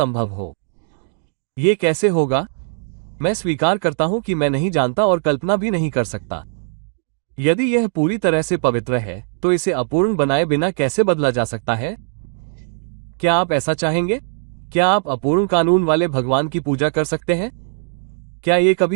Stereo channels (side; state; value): left; silent; digital silence